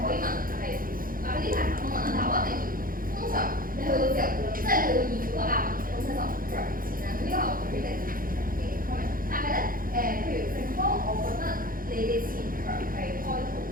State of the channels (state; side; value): late; left; 0.41 ms